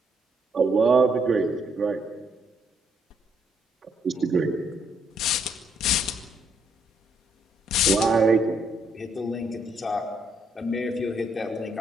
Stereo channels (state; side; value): normal; both; correlation 0.73